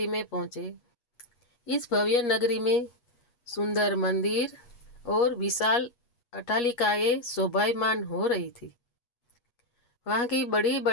में पहुँचे। इस भव्य नगरी में सुंदर मंदिर और विशाल अट्टालिकाएं शोभायमान हो रही थी। वहाँ की बड़ी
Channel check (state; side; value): late; right; 8.3 ms